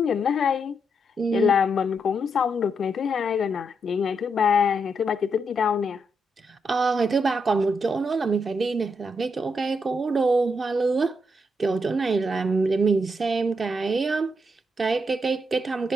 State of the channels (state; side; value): normal; both; correlation 0.80